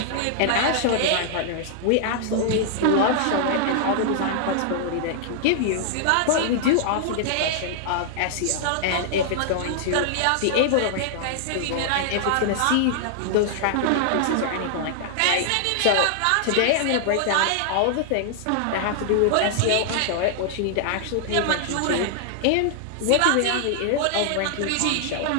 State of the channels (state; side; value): different; both; correlation -0.01